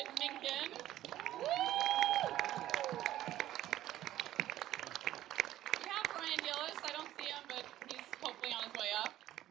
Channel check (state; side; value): quieter; left; 13.7 dB